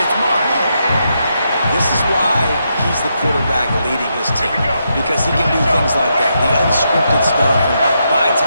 Mark. This is why he's the quarterback leading his team, because he can do things like that, the unscripted stuff, and buy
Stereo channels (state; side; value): inverted; both; correlation -0.81